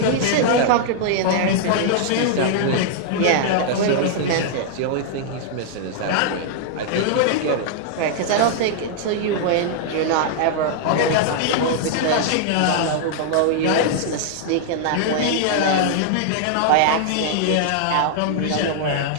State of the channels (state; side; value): different; both; correlation -0.01